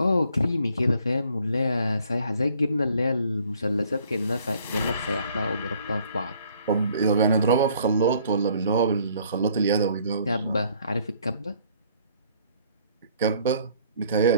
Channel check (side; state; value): both; inverted; correlation -0.60